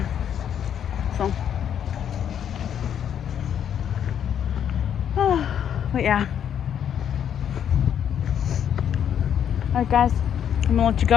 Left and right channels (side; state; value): right; quieter; 9.0 dB